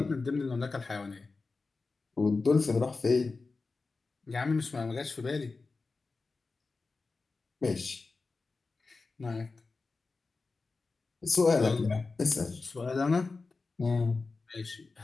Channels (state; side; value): quieter; right; 4.0 dB